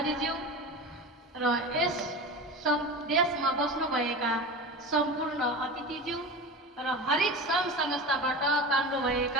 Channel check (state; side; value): normal; both; correlation 0.29